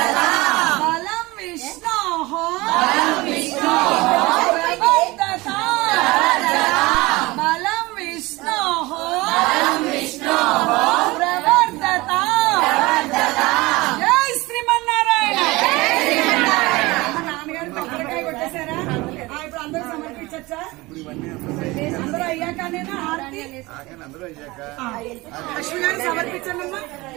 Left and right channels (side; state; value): left; quieter; 21.7 dB